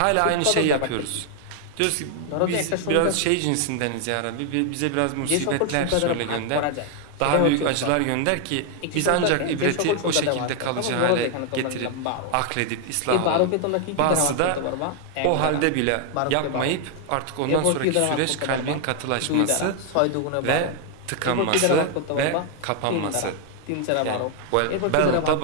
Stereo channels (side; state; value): both; different; correlation 0.00